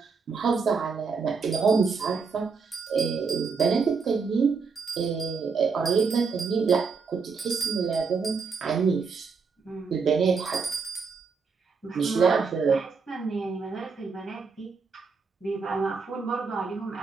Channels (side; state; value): left; quieter; 5.0 dB